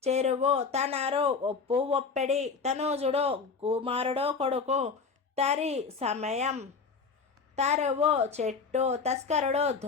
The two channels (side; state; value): right; quieter; 5.1 dB